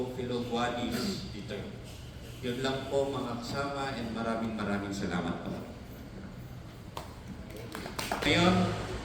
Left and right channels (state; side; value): identical; both; correlation 1.00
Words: Guadis III. Yun lang po mga kasama and maraming salamat po. Ngayon,